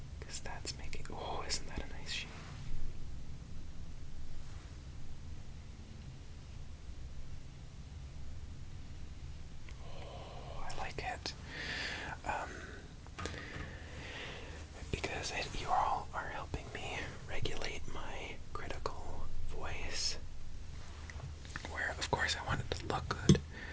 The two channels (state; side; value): identical; both; correlation 1.00